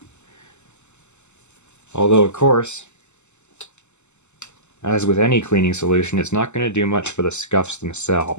Although, of course, as with any cleaning solution, it's not going to do much for the scuffs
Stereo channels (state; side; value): late; right; 0.83 ms